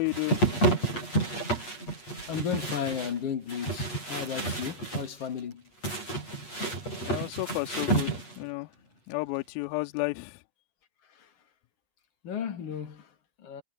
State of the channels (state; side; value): late; right; 8.4 ms